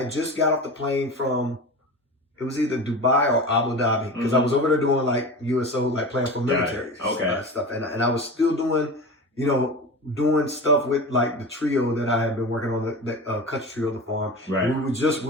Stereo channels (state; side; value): normal; both; correlation 0.30